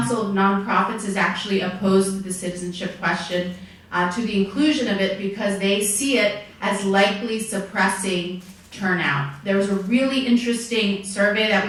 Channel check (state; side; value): identical; both; correlation 1.00